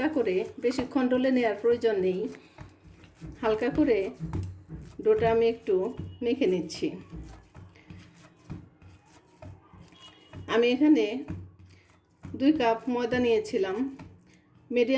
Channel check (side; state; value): both; identical; correlation 1.00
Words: করে, বেশিক্ষণ ডলে নেওয়ার প্রয়োজন নেই, হালকা করে ডোটা আমি একটু মেখে নিচ্ছি। আমি এখানে 2 কাপ ময়দা নিয়েছিলাম।